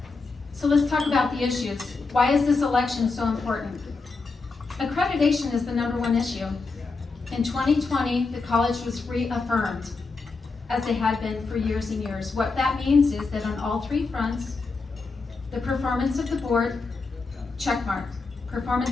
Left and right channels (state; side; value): quieter; right; 4.1 dB